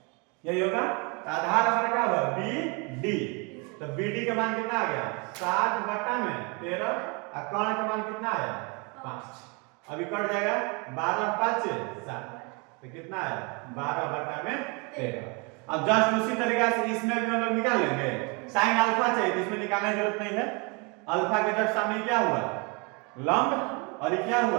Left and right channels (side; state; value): left; quieter; 31.3 dB